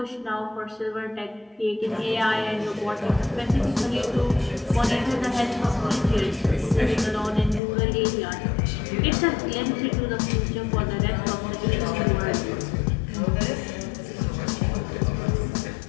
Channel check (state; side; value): drops out; right; at 7.6 s